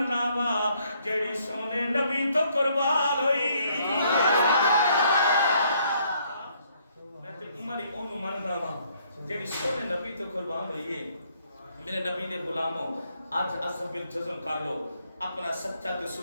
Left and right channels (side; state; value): both; inverted; correlation -0.68